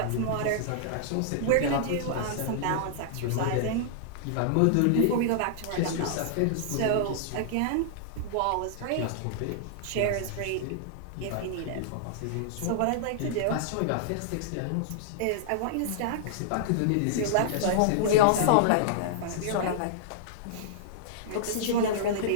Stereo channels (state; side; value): different; both; correlation -0.01